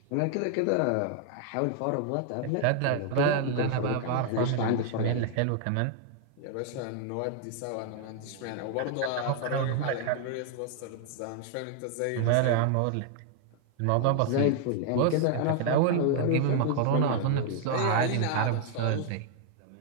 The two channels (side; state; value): both; different; correlation 0.00